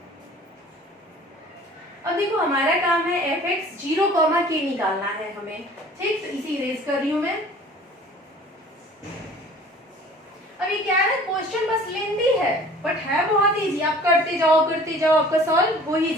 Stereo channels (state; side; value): normal; both; correlation 0.48